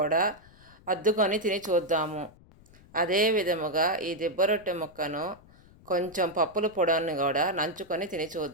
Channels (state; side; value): noise; left; rumble, 25 dB below the sound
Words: అద్దుకొని తిని చూద్దాము. అదే విధముగా ఈ దిబ్బరొట్టె ముక్కను కొంచెం పప్పుల పొడిని కూడా నంచుకొని తిని